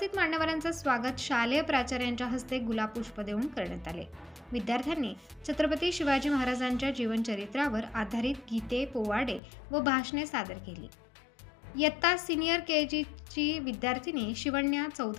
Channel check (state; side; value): drops out; right; at 9.4 s